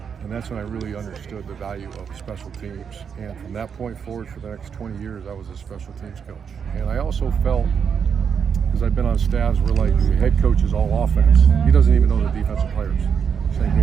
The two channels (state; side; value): quieter; left; 6.9 dB